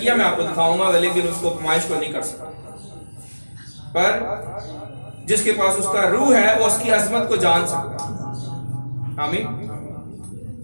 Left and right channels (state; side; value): inverted; both; correlation -1.00